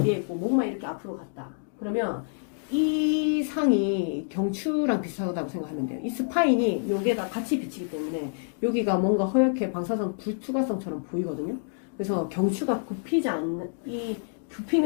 뒤에 있고 목만 이렇게 앞으로 갔다. 그러면 이 상이 경추랑 비슷하다고 생각하면 돼요. 이 스파인이 여기에다 같이 비치기 때문에 여기가 뭔가 허옇게 방사선 불투과성처럼 보이거든요. 그래서 경추가 굽히지 않는,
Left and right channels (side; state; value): right; silent; digital silence